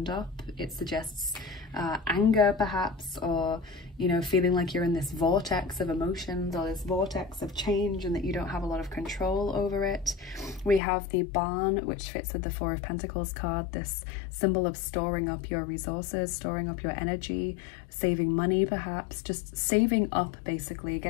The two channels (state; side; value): drops out; right; at 10.8 s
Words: up. It suggests anger perhaps, or, you know, feeling like you're in this vortex of emotions or this vortex of change and that you don't have a lot of control over it. We have the Barn, which fits with the 4 of Pentacles card, this symbol of storing up your resources, storing up your energy, saving money perhaps, just saving up basically,